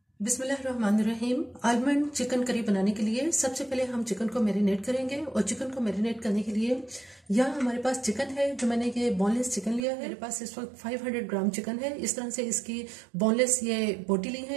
बिस्मिल्लाहिर्रहमानिर्रहीम। आलमंड चिकन करी बनाने के लिए सबसे पहले हम चिकन को मैरिनेट करेंगे और चिकन को मैरिनेट करने के लिए यहाँ हमारे पास चिकन है जो मैंने ये बोनलेस चिकन लिया है। मेरे पास इस वक्त 500 ग्राम चिकन है। इस तरह से इसकी बोनलेस ये बोटी ली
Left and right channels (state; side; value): drops out; left; at 9.9 s